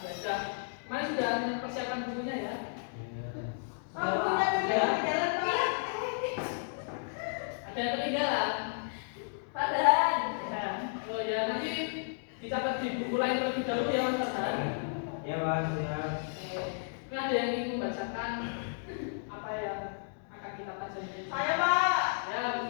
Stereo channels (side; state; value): right; silent; digital silence